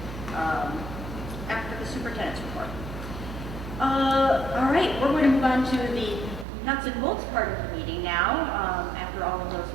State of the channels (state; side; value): drops out; left; at 6.5 s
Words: after the superintendent's report. All right, we're going to move on to the nuts and bolts part of the meeting now, after all of those